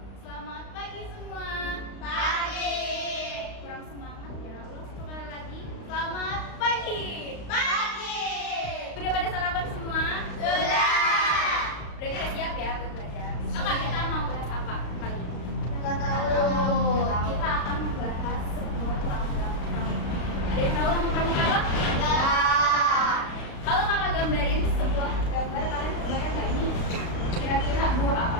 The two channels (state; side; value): late; right; 35 ms